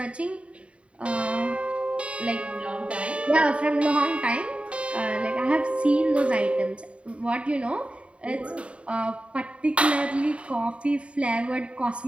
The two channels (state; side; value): late; left; 0.061 ms